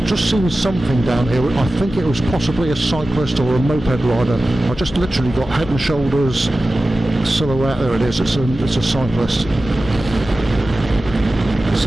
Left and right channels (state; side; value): normal; both; correlation 0.95